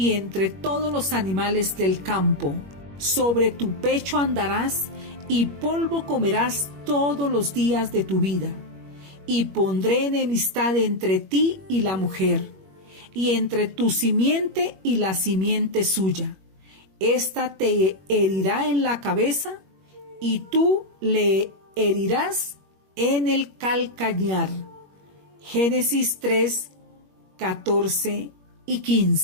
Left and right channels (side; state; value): left; late; 21 ms